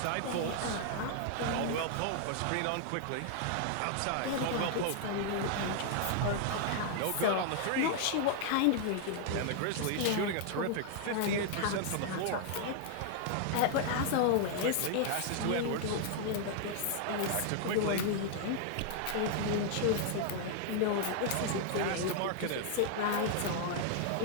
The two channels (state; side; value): different; both; correlation 0.00